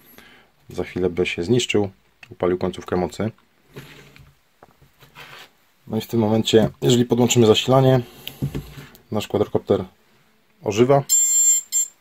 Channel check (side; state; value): both; identical; correlation 1.00